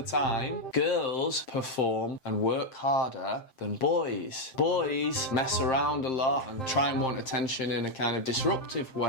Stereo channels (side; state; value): right; late; 7.7 ms